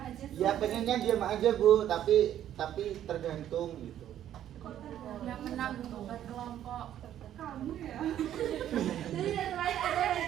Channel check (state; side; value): quieter; left; 11.2 dB